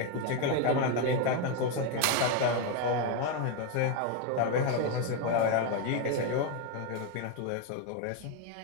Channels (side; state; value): both; different; correlation 0.02